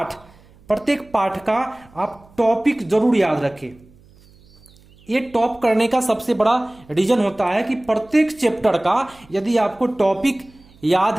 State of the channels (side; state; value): right; noise; hum, 27 dB below the sound